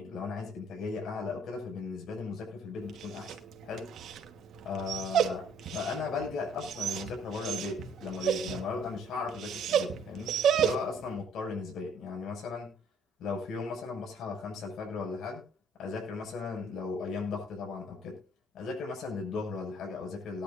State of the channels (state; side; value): normal; both; correlation 0.60